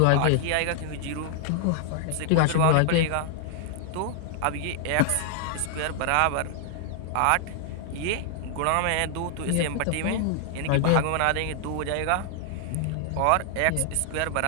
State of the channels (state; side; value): different; both; correlation 0.00